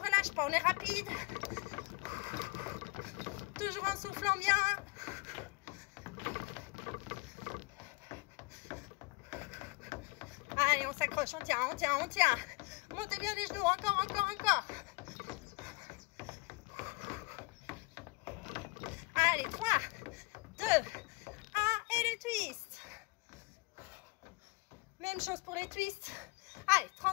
pas, on est rapide. Toujours en soufflant bien. Allez, on s'accroche, on tient, on tient, on tient. Montez bien les genoux, encore, encore, encore. Allez, 3, 2, 1 et le twist. Même chose pour les twists. Allez,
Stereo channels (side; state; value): right; quieter; 25.9 dB